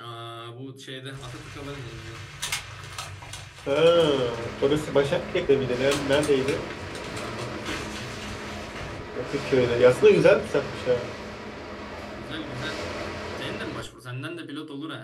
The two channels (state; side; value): identical; both; correlation 1.00